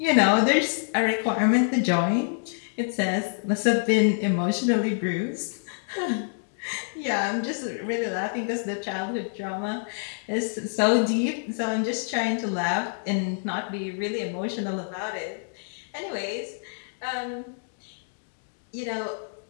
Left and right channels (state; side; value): silent; right; digital silence